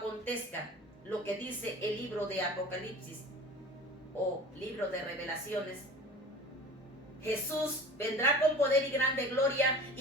lo que dice el libro de Apocalipsis o libro de Revelaciones, Jesús vendrá con poder y grande gloria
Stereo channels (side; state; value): both; normal; correlation 0.40